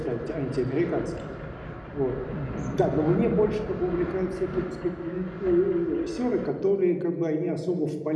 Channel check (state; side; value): identical; both; correlation 1.00